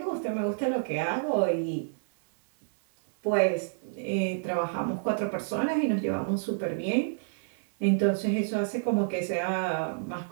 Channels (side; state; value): left; silent; 58 dB below the other